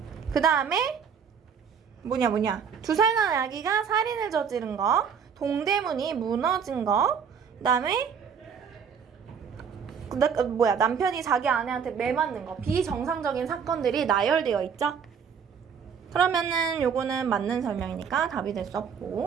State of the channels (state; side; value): quieter; left; 6.9 dB